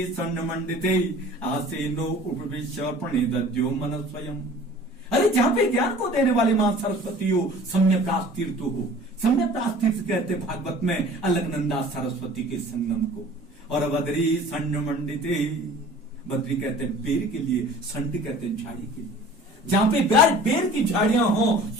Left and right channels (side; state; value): both; normal; correlation 0.46